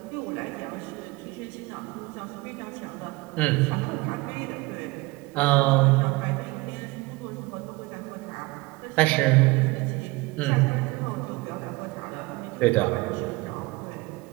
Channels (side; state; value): left; quieter; 22.8 dB